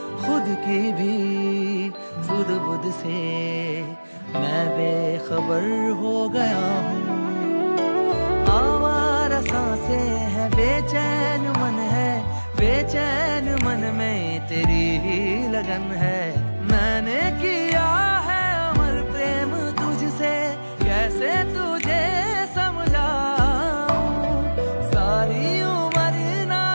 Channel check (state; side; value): inverted; both; correlation -1.00